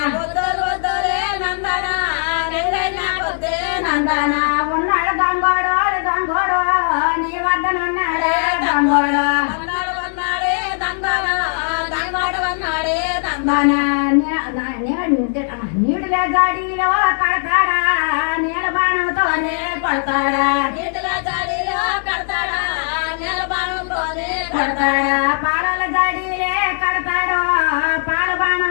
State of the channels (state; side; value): silent; right; digital silence